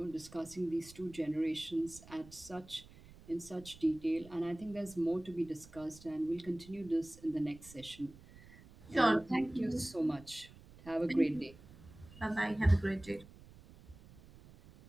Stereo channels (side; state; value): right; noise; rumble, 20 dB below the sound